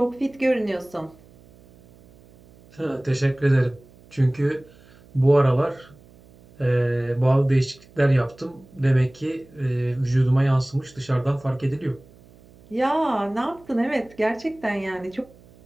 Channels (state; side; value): noise; right; hum, 26 dB below the sound